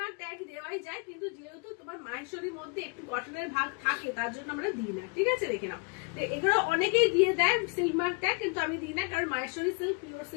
মার্ক ট্যাগ দেওয়াই যায়, কিন্তু যেহেতু তোমার মাহেশ্বরীর মধ্যে একটু কটনের ভাগ থাকে তার জন্য আমরা দিই না, ঠিক আছে? দেখে নাও এগুলো অনেকেই দিয়ে দেয় সিল্ক মার্ক ট্যাগ, কিন্তু আমি দিই না, কারণ মাহেশ্বরী সিল্ক পিওর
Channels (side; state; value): right; quieter; 35.4 dB